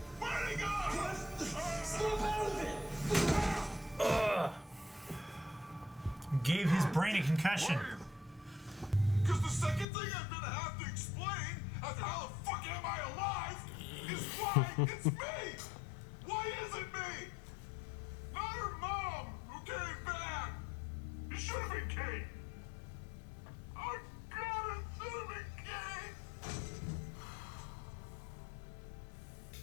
Where'd he go? Snap out of it! Gave his brain a concussion. Because the second thing I'm gonna have to explain after how the fuck am I alive is why it's me! Why is it me? Not her mom who came back! It should have been Kate! Oh god, it should have been Kate!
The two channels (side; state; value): right; drops out; at 9.9 s